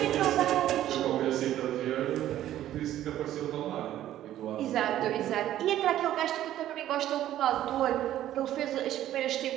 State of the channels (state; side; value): quieter; left; 12.7 dB